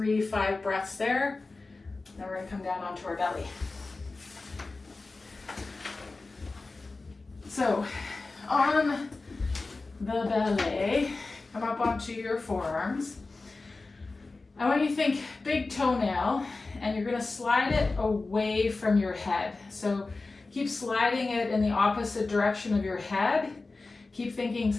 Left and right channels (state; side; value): quieter; right; 3.6 dB